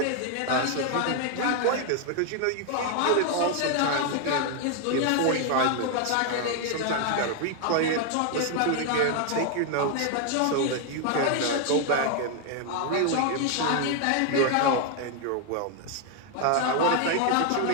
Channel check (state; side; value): different; both; correlation 0.00